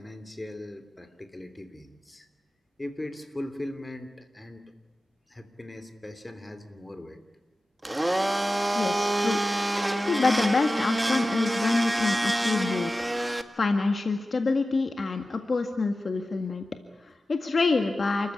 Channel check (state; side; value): normal; both; correlation 0.95